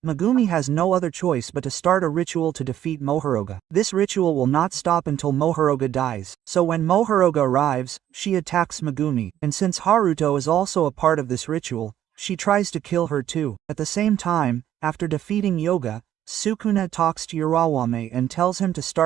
Megumi has no other choice but to start a ritual to defeat Mohuroga. This ritual will not stop until Mohuroga dies. So when Mohuroga arrives, she attacks Megumi, and since Haruto is also a part of this ritual, she tries to kill her too. At the same time, after defeating Yoga, Sukuna talks to Urawame and tells him to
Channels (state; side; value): quieter; left; 11.5 dB